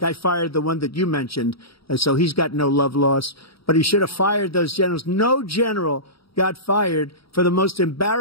I fired the one that you mentioned, and so he's got no love lost. But he should have fired those generals. No general got fired for the most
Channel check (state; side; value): late; right; 0.76 ms